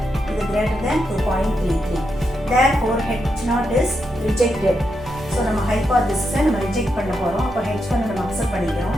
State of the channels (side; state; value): both; normal; correlation 0.84